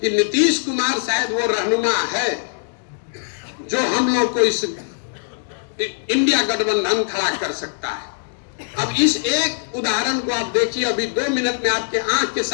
कि नीतीश कुमार शायद वो रहनुमा है जो हम लोग को इस इंडिया गठबंधन खड़ा कर सकता है। अब इस एक उदाहरण को आप देखिए, अभी 2 मिनट में आपके आंख के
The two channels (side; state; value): right; silent; digital silence